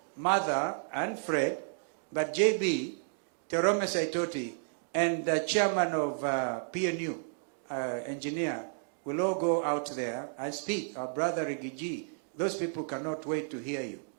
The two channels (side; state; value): left; silent; digital silence